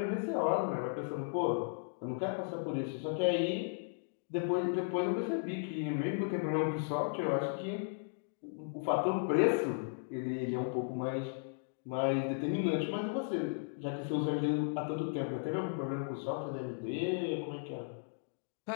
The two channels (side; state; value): right; silent; digital silence